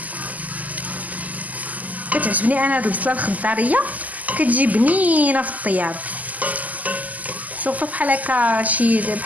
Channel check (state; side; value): late; left; 0.078 ms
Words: كتعجبني انا هاد البصله الخضاريه، كتجي بنينه في الطياب. شوفوا بحال هكا